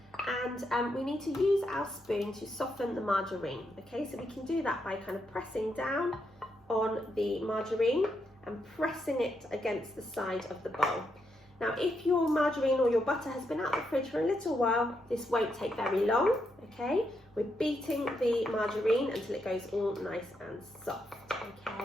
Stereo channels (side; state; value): both; normal; correlation 0.81